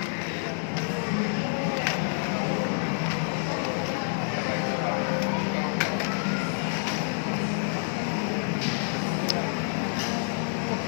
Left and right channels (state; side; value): silent; right; 59 dB below the other